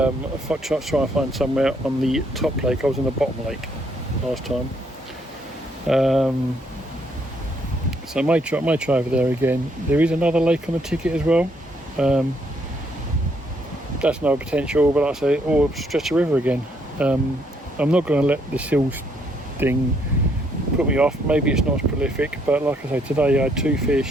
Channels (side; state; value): both; normal; correlation 0.71